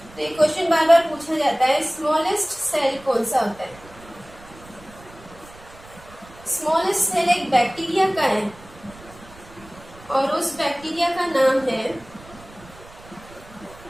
तो ये क्वेश्चन बार बार पूछा जाता है, स्मॉलेस्ट सेल कौन सा होता है? स्मॉलेस्ट सेल एक बैक्टीरिया का है और उस बैक्टीरिया का नाम है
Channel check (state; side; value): noise; right; rumble, 21 dB below the sound